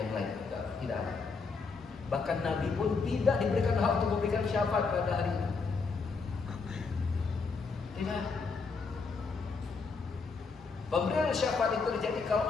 lain. Tidak ada. Bahkan Nabi pun tidak diberikan hak untuk memberikan syafaat pada hari ini. Tidak. Pemberian syafaat itu terjadi kalau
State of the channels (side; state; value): right; quieter; 4.7 dB